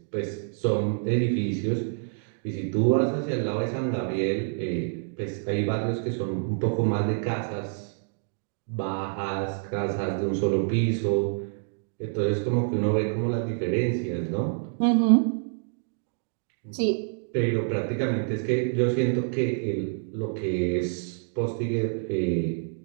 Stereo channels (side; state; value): left; silent; 60 dB below the other